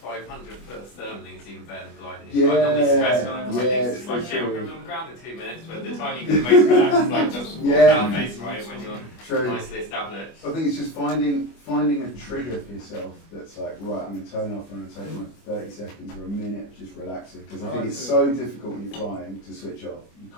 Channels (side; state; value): right; late; 25 ms